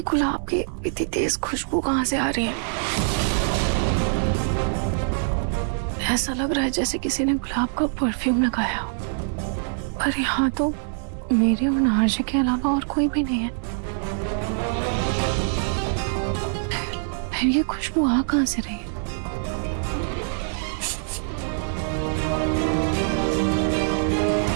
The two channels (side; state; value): left; silent; digital silence